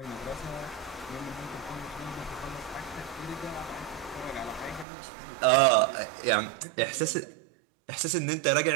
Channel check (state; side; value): drops out; left; at 4.9 s